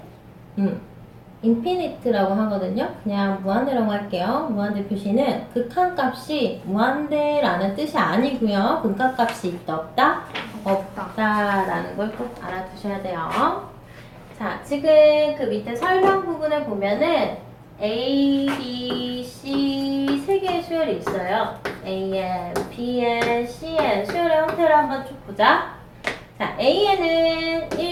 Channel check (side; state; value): both; identical; correlation 1.00